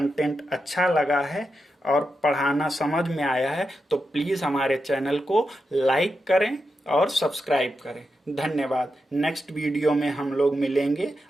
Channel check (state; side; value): normal; both; correlation 0.87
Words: अच्छा लगा है और पढ़ाना समझ में आया है तो प्लीज हमारे चैनल को लाइक करें और सब्सक्राइब करें। धन्यवाद। नेक्स्ट वीडियो में हम लोग मिलेंगे